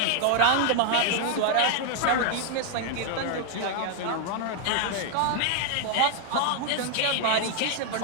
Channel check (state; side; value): different; both; correlation 0.00